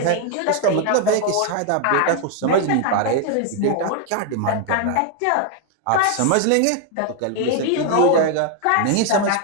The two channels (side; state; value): both; different; correlation 0.00